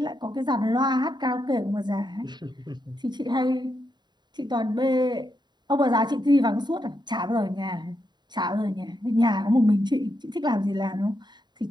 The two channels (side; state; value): left; late; 0.21 ms